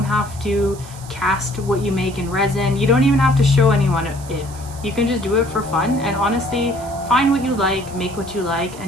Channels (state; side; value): noise; right; hiss, 18 dB below the sound